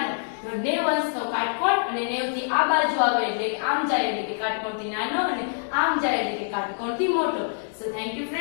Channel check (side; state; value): right; silent; digital silence